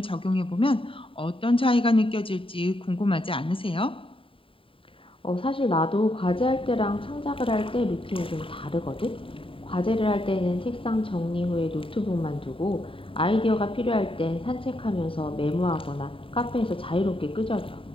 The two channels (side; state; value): right; late; 0.26 ms